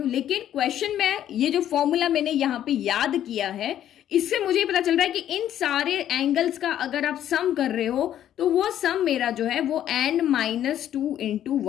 लेकिन क्वेश्चन में ये जो फॉर्मूला मैंने यहाँ पे याद किया है, इससे मुझे पता चल रहा है कि इन सारे एंगल्स का अगर आप सम कर रहे हो तो वो सम मेरा जो है वो n-2 इंटू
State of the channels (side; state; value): right; quieter; 11.1 dB